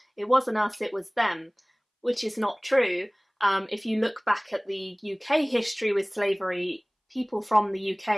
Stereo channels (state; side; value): identical; both; correlation 1.00